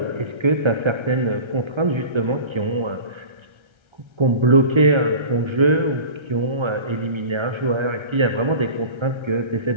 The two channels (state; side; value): late; left; 1.3 ms